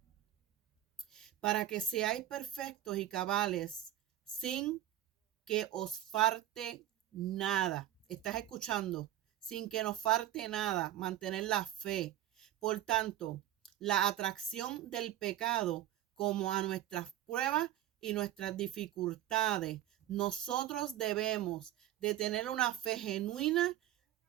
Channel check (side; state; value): left; quieter; 12.9 dB